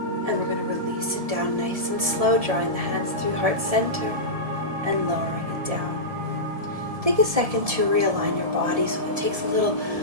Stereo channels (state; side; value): late; left; 1.7 ms